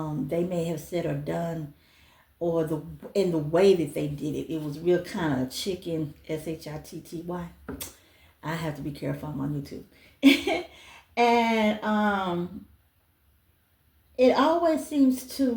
they may have said or done, or in the way that they did it. It was real kind of chicken, Shitty. I have to be careful. I'm on YouTube. And it always seems to,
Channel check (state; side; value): identical; both; correlation 1.00